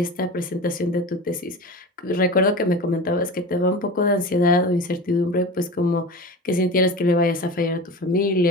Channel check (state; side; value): normal; both; correlation 0.31